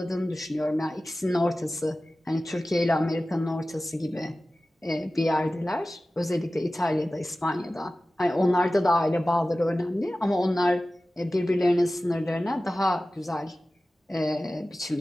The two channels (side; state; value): both; normal; correlation 0.96